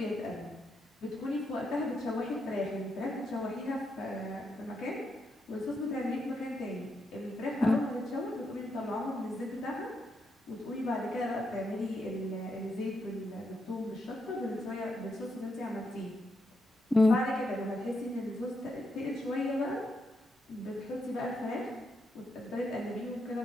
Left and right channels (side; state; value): both; normal; correlation 0.81